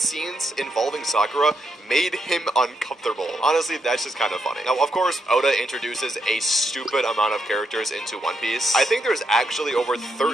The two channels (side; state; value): both; normal; correlation 0.80